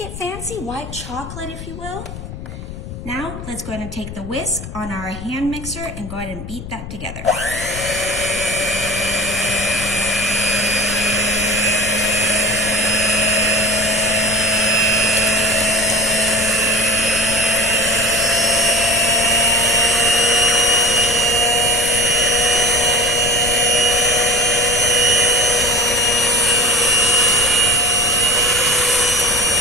fancy, white chocolate if you will. Now, let's go ahead and take the whisk on our hand mixer and go ahead and beat that together.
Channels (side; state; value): left; noise; rumble, 11 dB below the sound